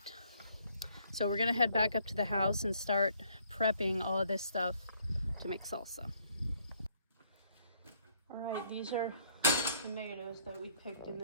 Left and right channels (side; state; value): both; inverted; correlation -0.65